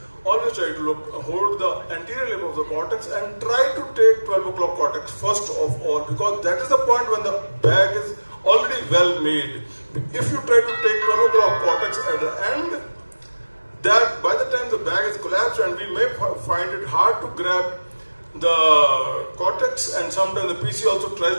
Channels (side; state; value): both; inverted; correlation -1.00